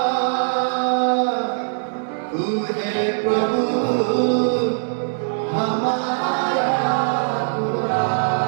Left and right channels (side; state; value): left; silent; digital silence